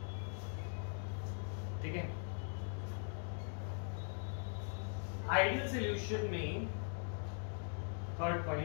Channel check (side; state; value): right; silent; 50 dB below the other